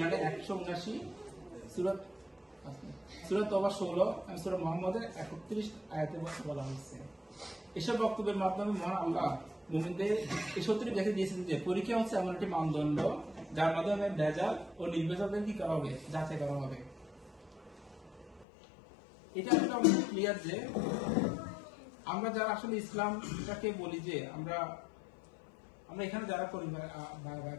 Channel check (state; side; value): drops out; right; at 18.4 s